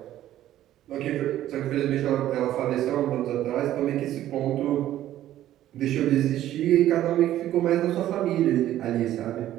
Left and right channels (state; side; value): quieter; left; 13.0 dB